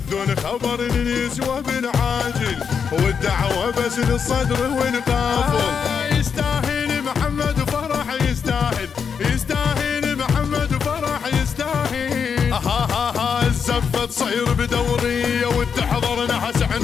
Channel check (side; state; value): right; quieter; 6.6 dB